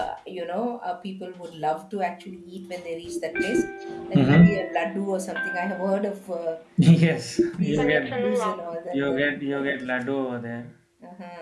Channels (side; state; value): both; identical; correlation 1.00